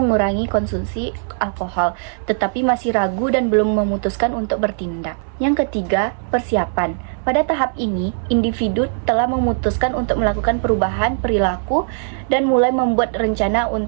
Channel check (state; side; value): silent; left; digital silence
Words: konsumsi alkohol, tetapi masih ragu dan belum memutuskan untuk bertindak. Yang ketiga, persiapan. Pada tahap ini, individu telah memutuskan untuk melakukan perubahan perilaku dan mulai membuat rencana